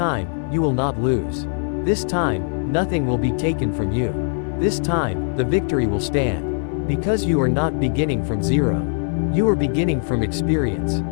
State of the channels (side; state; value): right; silent; 61 dB below the other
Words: you will not lose. This time, nothing will be taken from you. This time, the victory will stand. Because you are not beginning from zero. You are beginning from experience,